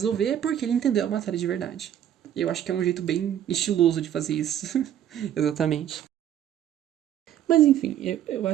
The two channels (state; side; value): quieter; left; 10.6 dB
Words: é porque ele entendeu a matéria de verdade. Eu acho que é um jeito bem estiloso de fazer isso. Exatamente. Mas enfim, eu